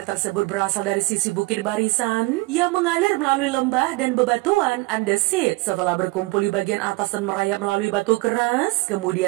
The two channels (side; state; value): left; quieter; 23.5 dB